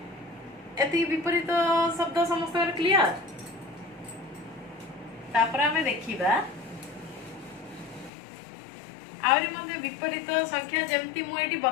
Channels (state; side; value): drops out; right; at 8.1 s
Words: एति विपरीत शब्द समस्त क्लियर तापर आमे देखिबा आउरी मध्ये विपरीत संख्या जेमती मु एटी